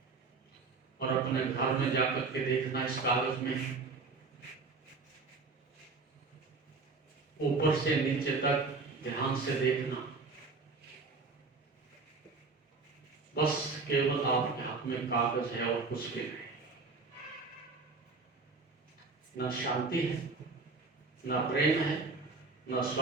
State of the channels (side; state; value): left; quieter; 4.1 dB